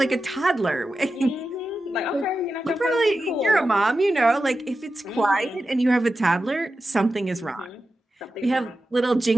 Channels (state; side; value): normal; both; correlation 0.92